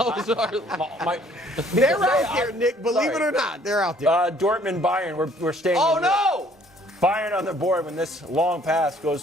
sorry. They're Because out there, Nick. Believe it or not, they're out there. Dortmund, Bayern, we're staying. Oh, in Europe. no! Bayern on the board when this long pass goes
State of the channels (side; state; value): both; normal; correlation 0.59